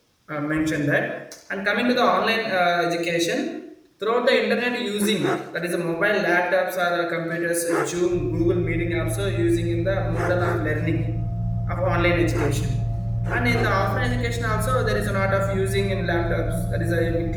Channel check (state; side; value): identical; both; correlation 1.00